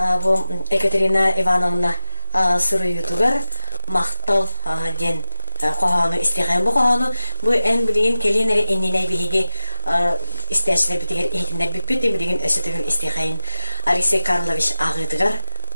bu Екатерина Ивановна Суруютугар мактал ден qohanu isteygen bu qohanu bu en bilgin kelinleri enine bihi isteşler bitiger ehtinler bitpeti bilgin ösütügün isteygen Alexey Karlovich ağıdıgar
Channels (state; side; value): inverted; both; correlation -1.00